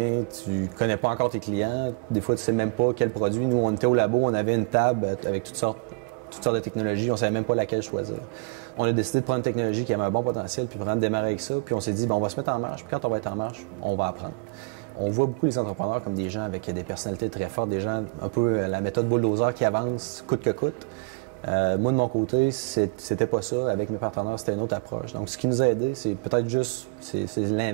tu connais pas encore tes clients, des fois tu sais même pas quel produit. Nous, on était au labo, on avait une table avec toutes sortes de technologies, on savait même pas laquelle choisir. On a décidé de prendre une technologie qui avait un bon potentiel, puis vraiment de démarrer avec ça, puis on s'est dit, bon, on va se mettre en marche, puis quand on va être en marche, on va apprendre. On voit beaucoup les entrepreneurs comme des gens avec des personnalités très fortes, des gens un peu la méthode bulldozer qui avance coûte que coûte. Moi, de mon côté, c'était pas ça. Avec mes partenaires, c'était une autre approche. Donc, ce qui nous a aidé, c'est peut-être juste, c'est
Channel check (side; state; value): left; quieter; 31.3 dB